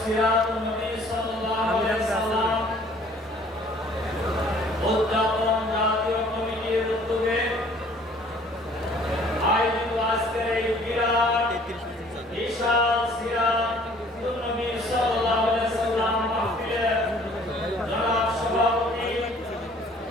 সিরাতুন নবী সাল্লাল্লাহু আলাইহি সাল্লাম উদ্যাপন জাতীয় কমিটির উদ্যোগে আয়োজিত আজকের এই বিরাট বিশাল সিরাতুন নবী সাল্লাল্লাহু আলাইহি সাল্লাম মাহফিলের জনাব সভাপতি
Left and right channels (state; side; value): normal; both; correlation 0.55